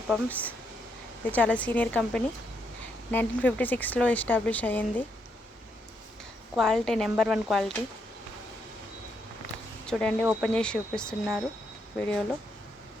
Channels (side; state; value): both; normal; correlation 0.77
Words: పంప్స్. ఇది చాలా సీనియర్ కంపెనీ, 1956లో ఎస్టాబ్లిష్ అయ్యింది. Quality number 1 quality. చూడండి, ఓపెన్ చేసి చూపిస్తున్నారు వీడియోలో.